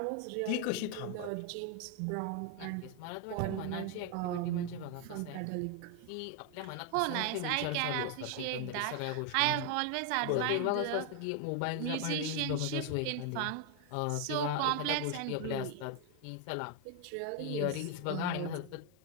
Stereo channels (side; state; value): both; different; correlation 0.01